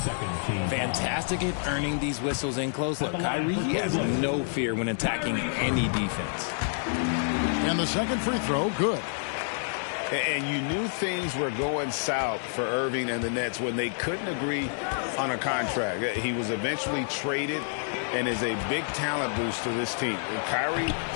Fantastic at earning these whistles in close. Look, Kyrie, he has no fear when attacking any defense. And the second free throw, good. And you knew things were going south for Irving and the Nets when they couldn't agree on a contract. He was eventually traded and is a big talent boost to this team. And Kyrie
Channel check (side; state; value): right; silent; digital silence